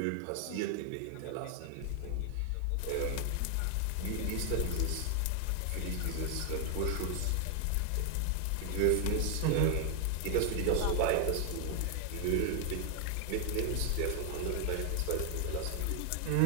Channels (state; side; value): different; both; correlation 0.00